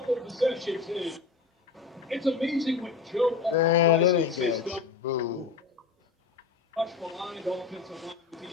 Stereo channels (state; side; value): quieter; right; 4.8 dB